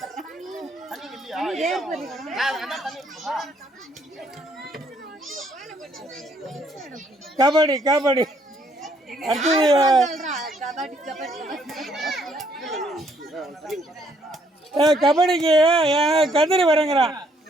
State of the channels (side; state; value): both; normal; correlation 0.68